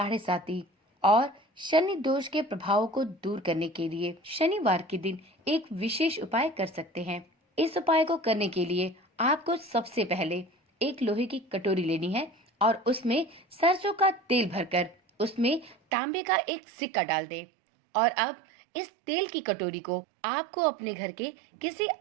साती और शनि दोष के प्रभावों को दूर करने के लिए शनिवार के दिन एक विशेष उपाय कर सकते हैं। इस उपाय को करने के लिए आपको सबसे पहले एक लोहे की कटोरी लेनी है और उसमें सरसों का तेल भरकर उसमें तांबे का एक सिक्का डाल दे और अब इस तेल की कटोरी को आपको अपने घर के किसी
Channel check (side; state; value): left; drops out; at 15.8 s